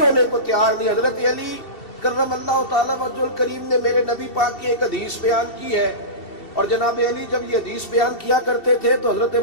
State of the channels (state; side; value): late; right; 2.7 ms